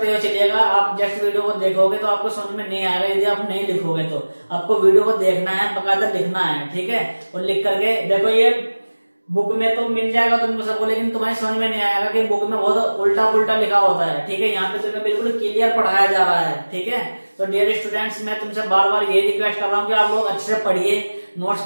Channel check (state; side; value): inverted; both; correlation -1.00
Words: हुए चलिएगा। आप जस्ट वीडियो को देखोगे तो आपको समझ में नहीं आएगा, यदि आप नहीं लिखोगे तो। आपको वीडियो को देखना है, बकायदा लिखना है, ठीक है। और लिख करके देखो, ये बुक में तो मिल जाएगा तुमको सबको, लेकिन तुम्हारी समझ में नहीं आएगा कि बुक में बहुत उल्टा पुल्टा लिखा होता है, ठीक है। यहाँ पे तुम्हें बिल्कुल क्लियर पढ़ाया जा रहा है, ठीक है। तो डियर स्टूडेंट्स, मैं तुमसे बार बार ये रिक्वेस्ट कर रहा हूँ कि आप लोग अच्छे से पढ़िए, नोट्स